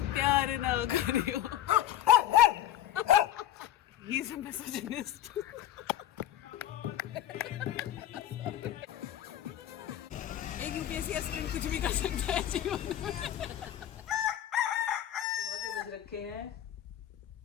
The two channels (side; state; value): right; quieter; 12.0 dB